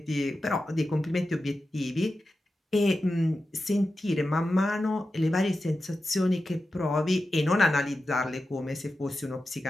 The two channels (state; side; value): normal; both; correlation 0.92